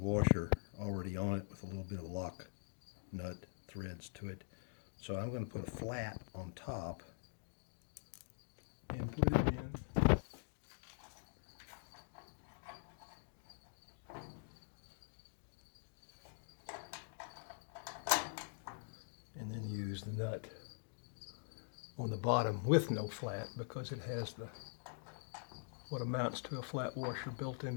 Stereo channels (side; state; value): right; silent; digital silence